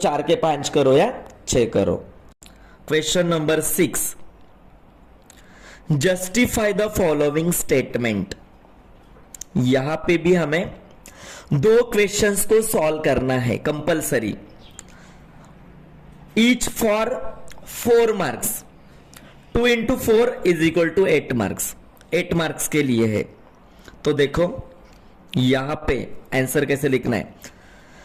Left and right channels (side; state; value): both; identical; correlation 1.00